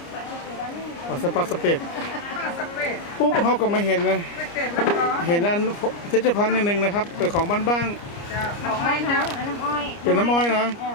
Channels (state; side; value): late; right; 29 ms